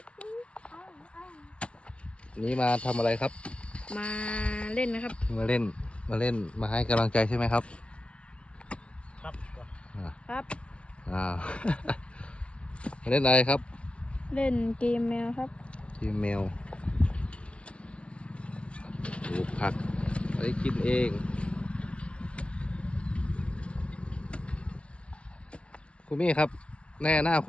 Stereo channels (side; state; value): right; late; 0.060 ms